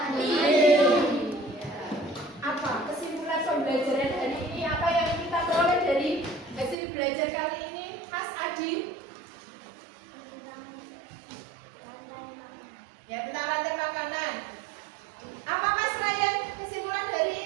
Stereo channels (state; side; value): drops out; left; at 6.8 s